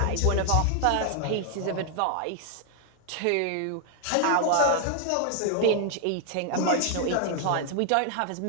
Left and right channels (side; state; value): both; different; correlation 0.00